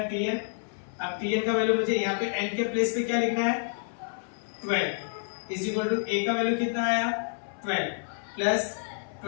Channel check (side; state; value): right; silent; 59 dB below the other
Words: Tn। अब Tn का वैल्यू मुझे यहाँ पे n के प्लेस पे क्या लिखना है 12 इज इक्वल टू A का वैल्यू कितना आया 12 प्लस